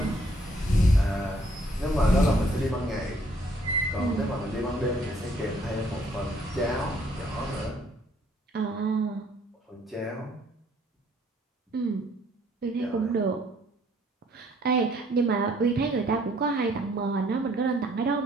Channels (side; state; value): both; normal; correlation 0.64